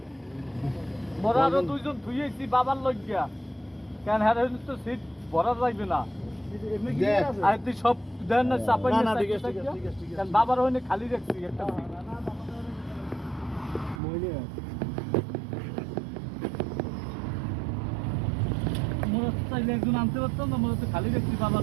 মোরা আরো দুইজন ধুইয়েছি বাবার লজ্ঞা কেন হ্যাঁ তো সিট ভরা যাইবে না এমনি কি দেখ। আছে আর তুই সব দেন না চাপাই না, না না, ঠিক আছে, ঠিক আছে, ঠিক আছে, ঠিক আছে। কেন বাবার হইনে খালি রাখছি একটা সিট মইলে মোরা চাইলে একজন আনতে পারতাম না মোরা তো খালি রাখছি বাবার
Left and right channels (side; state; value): left; drops out; at 14.0 s